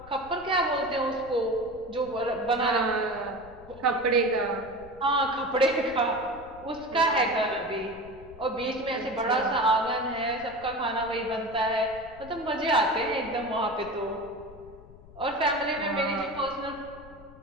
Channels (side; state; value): left; noise; rumble, 20 dB below the sound